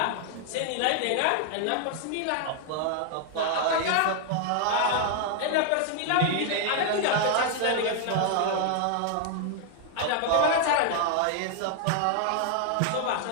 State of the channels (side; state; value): both; different; correlation 0.00